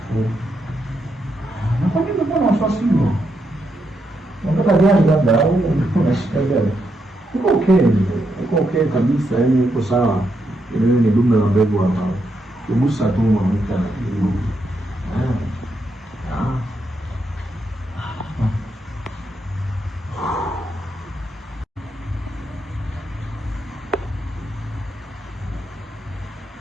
Na kwa nini mbona wasiwasi huo? Unataka gani labda au unashika gani? Uko okay kabisa, yani uko sawa. Ile ni dume la mbegu hapa. Kugusa tu mwanamke na kitu.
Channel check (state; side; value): normal; both; correlation 0.81